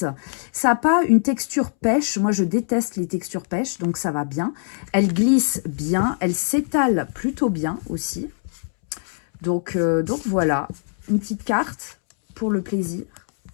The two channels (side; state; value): right; silent; 64 dB below the other